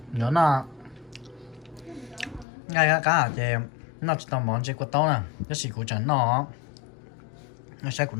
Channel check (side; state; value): right; drops out; at 2.5 s